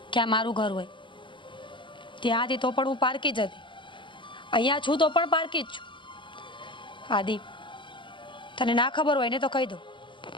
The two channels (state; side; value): late; right; 0.24 ms